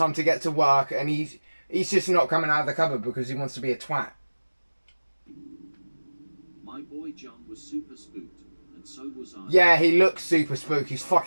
to get to work," and he's just not coming out of the cupboard because he wants to be a twat. My boy John was super spooked, and so was I. Yeah, he looks super spooked. He's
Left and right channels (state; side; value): inverted; both; correlation -1.00